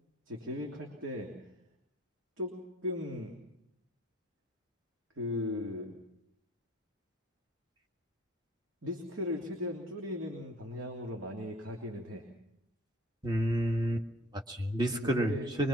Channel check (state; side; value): normal; both; correlation 0.53